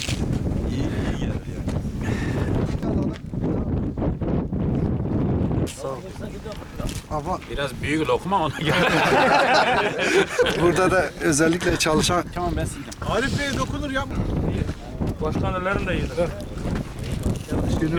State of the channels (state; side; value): identical; both; correlation 1.00